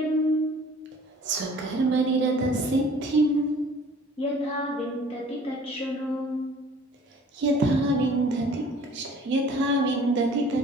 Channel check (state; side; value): normal; both; correlation 0.51